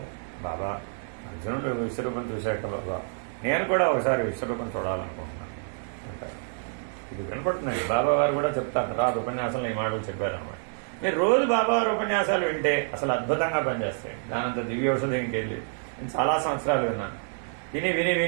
బాబా అర్జునుడు విశ్వరూపం చూశాక బాబా నేను కూడా ఒకసారి విశ్వరూపం చూడాలనుకుంటున్నాను అంటారు. ఇది వినపడుతుందండి. బాబా వారు కూడా చెప్తారు, రాదు ఉపన్యాసంలో ఈ మాటలు చెప్పారన్నమాట. మీరు రోజు బాబా వారి ఉపన్యాసాలు వింటే అసలు అద్భుతంగా పనిచేస్తాయి. దానంత దివ్య ఔషధం ఇంకెళ్ళి నేను చాలా సంవత్సరాలు విన్నాను. విని విని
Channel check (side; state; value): left; silent; digital silence